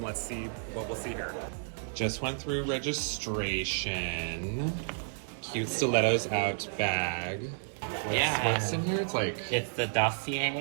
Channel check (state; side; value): silent; left; 57 dB below the other